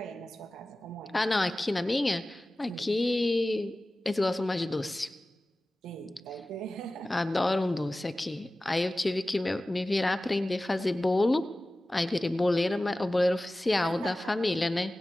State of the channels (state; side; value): normal; both; correlation 0.97